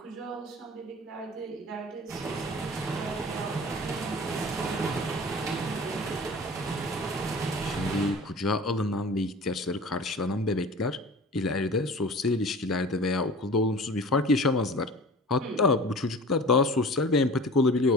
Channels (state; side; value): normal; both; correlation 0.40